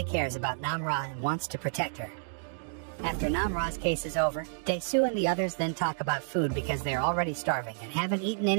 cares about Namra and wants to protect her. After Namra's case is over, Dae-soo and the others then talk about food because they're already starving and haven't eaten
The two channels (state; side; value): silent; left; digital silence